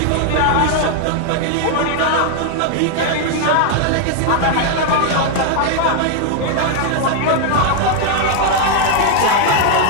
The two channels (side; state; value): both; different; correlation 0.00